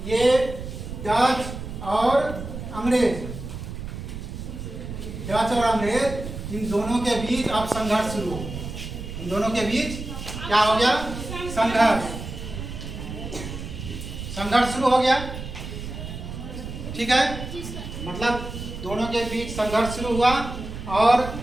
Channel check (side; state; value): right; noise; rumble, 8 dB below the sound